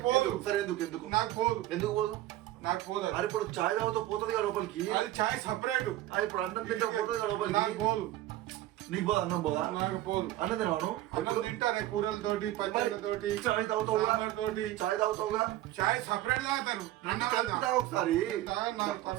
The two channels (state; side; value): quieter; left; 14.9 dB